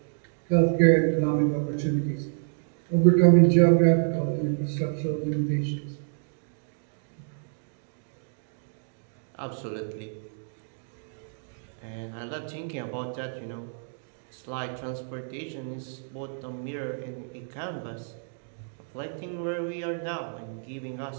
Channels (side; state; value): left; silent; digital silence